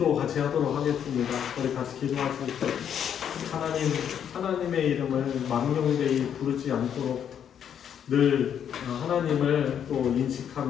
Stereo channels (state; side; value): quieter; right; 8.8 dB